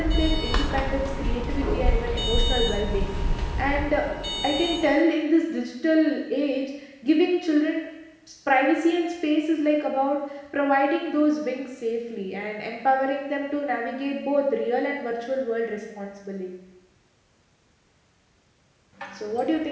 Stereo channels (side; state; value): both; identical; correlation 1.00